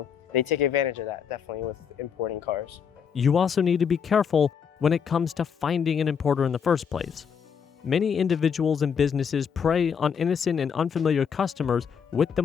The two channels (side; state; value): right; quieter; 7.0 dB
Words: they take advantage of that, definitely, with importing cars. You also need to be careful when it comes to finding an importer in the first place. Many individuals and businesses prey on innocent and unfamiliar customers with the